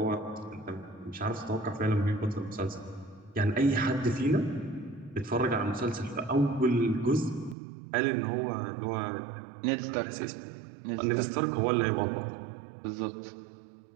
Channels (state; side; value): drops out; left; at 7.6 s